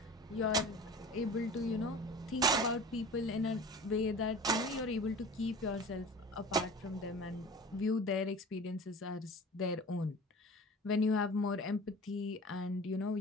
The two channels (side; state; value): both; normal; correlation 0.39